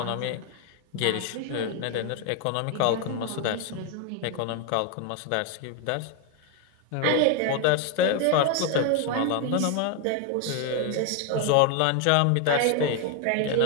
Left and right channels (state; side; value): different; both; correlation 0.01